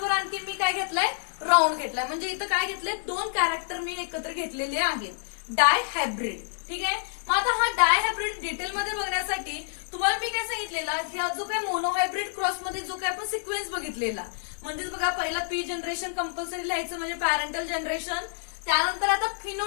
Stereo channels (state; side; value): silent; right; digital silence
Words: आणखी मी काय घेतलाय? राऊंड घेतलाय. म्हणजे इथं काय घेतलंय? दोन कॅरेक्टर मी एकत्र घेतलेले आहेत. डायहायब्रिड. ठीक आहे, मग आता हा डायहायब्रिड डिटेलमध्ये बघण्यासाठी तुम्हाला मी काय सांगितलेला? ह्या जो काय मोनोहायब्रिड क्रॉस मध्ये जो काय आपण सिक्वेन्स बघितलेला म्हणजेच बघा पहिला पी जनरेशन कंपल्सरी लिहायचं म्हणजे पॅरेंटल जनरेशन. त्यानंतर आता